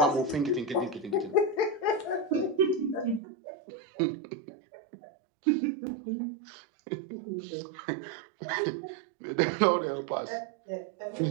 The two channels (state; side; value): drops out; left; at 3.2 s